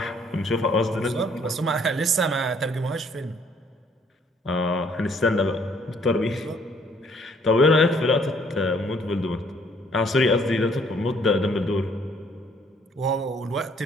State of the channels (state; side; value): normal; both; correlation 0.63